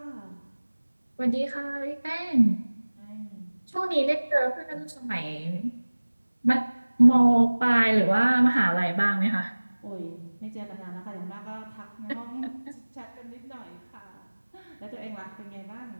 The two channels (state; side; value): inverted; both; correlation -1.00